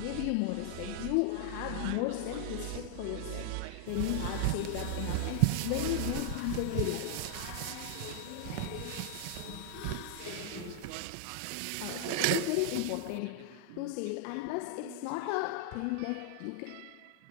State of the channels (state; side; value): different; both; correlation 0.00